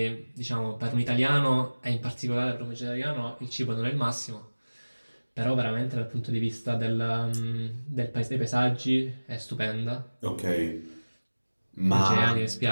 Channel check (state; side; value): inverted; both; correlation -1.00